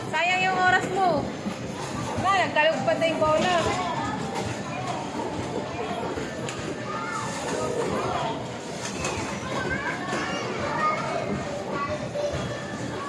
Sayang yung oras mo. Wala, nagkalugpad na yung bola.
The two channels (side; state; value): both; identical; correlation 1.00